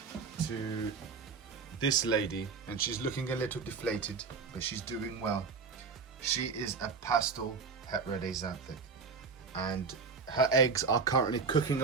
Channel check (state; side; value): quieter; left; 5.0 dB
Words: to this lady, and she's looking a little deflated, but she's doing well. She is a pastel het red axanthic, and her eggs are currently cooking